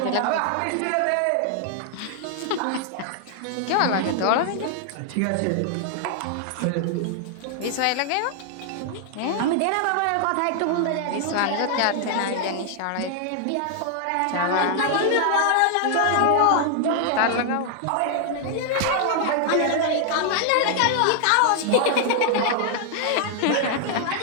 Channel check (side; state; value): both; different; correlation 0.00